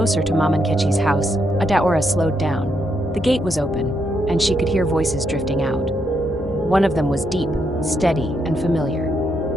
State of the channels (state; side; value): normal; both; correlation 0.79